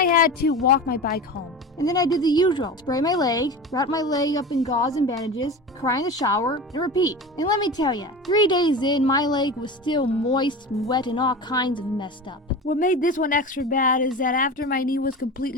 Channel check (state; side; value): normal; both; correlation 0.30